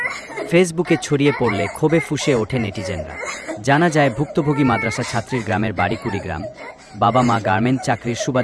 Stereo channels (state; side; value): identical; both; correlation 1.00